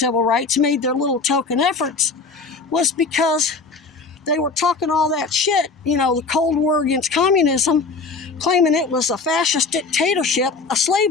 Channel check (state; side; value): quieter; right; 4.3 dB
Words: rights, made their little token efforts, was because they were talking all that shit, the Cold War against communism, claiming it was a fascist dictatorship, a